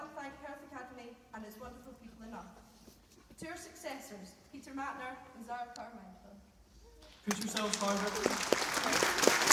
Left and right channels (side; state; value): both; identical; correlation 1.00